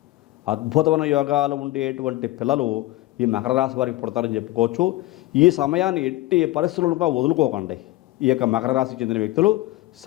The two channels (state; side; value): quieter; right; 17.7 dB